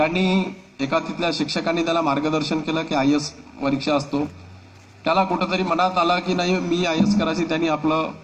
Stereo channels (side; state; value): both; identical; correlation 1.00